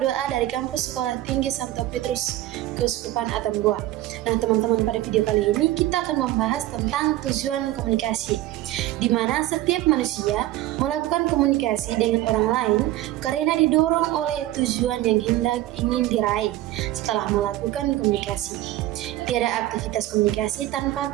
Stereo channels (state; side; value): quieter; left; 15.1 dB